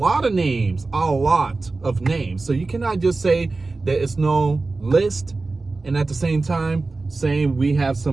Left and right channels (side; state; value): left; quieter; 3.6 dB